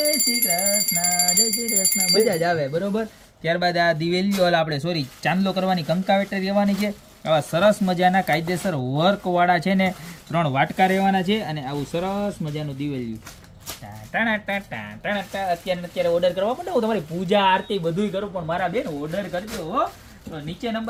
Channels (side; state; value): both; identical; correlation 1.00